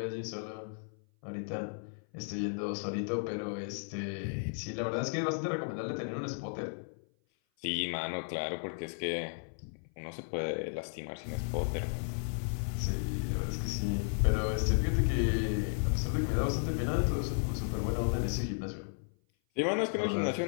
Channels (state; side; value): silent; right; 55 dB below the other